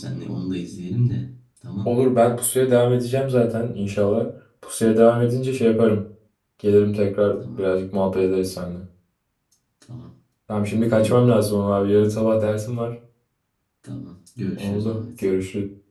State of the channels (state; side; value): identical; both; correlation 1.00